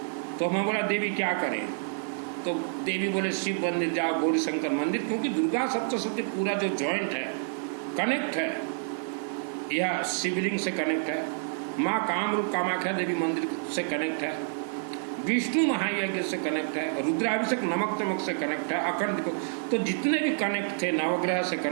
तो मैं बोला देवी क्या करें। तो देवी बोले शिव मंदिर जाओ, गौरी शंकर मंदिर, क्योंकि दुर्गा सप्तशती पूरा जो जॉइंट है कनेक्ट है, यह शिवलिंग से कनेक्ट है, माँ कामरूप कामाख्या देवी मंदिर से कनेक्ट है, विष्णु महायज्ञ से कनेक्ट है, रुद्राभिषेक नमक तमक से कनेक्ट है, अखंड। तो जितने भी कनेक्ट थे नवग्रह से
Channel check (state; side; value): silent; left; digital silence